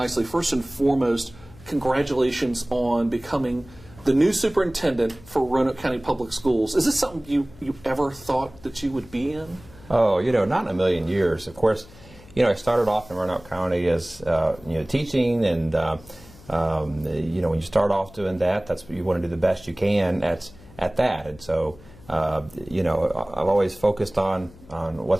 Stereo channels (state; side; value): noise; left; hum, 22 dB below the sound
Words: first and foremost, congratulations on becoming the new superintendent for Roanoke County Public Schools. Is this something you ever thought that you would be in? Oh, not in a million years. Of course, I started off in Roanoke County as, teaching, and, when you start off doing that, that's what you want to do the best you can at that. And so, I've always focused on